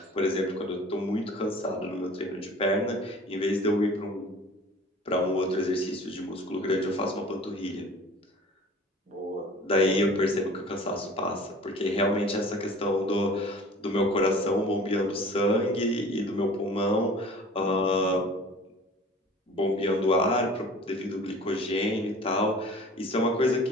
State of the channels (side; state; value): both; normal; correlation 0.45